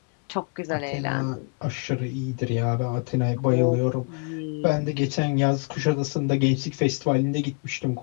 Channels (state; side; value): quieter; right; 35.8 dB